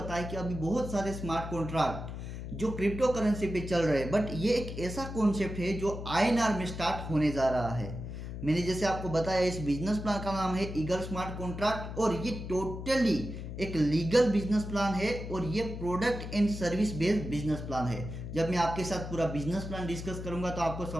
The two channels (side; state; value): left; noise; hum, 8 dB below the sound